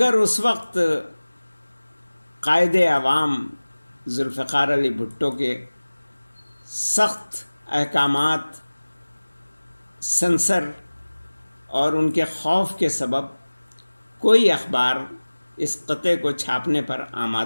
اس وقت قائد عوام ذوالفقار علی بھٹو کے سخت احکامات، سنسر اور ان کے خوف کے سبب کوئی اخبار اس قطعے کو چھاپنے پر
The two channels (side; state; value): both; inverted; correlation -1.00